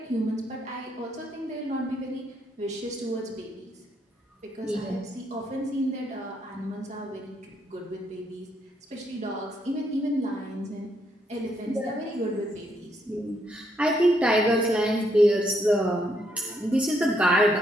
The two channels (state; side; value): normal; both; correlation 0.74